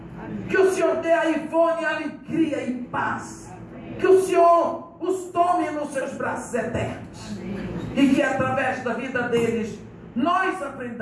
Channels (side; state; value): both; identical; correlation 1.00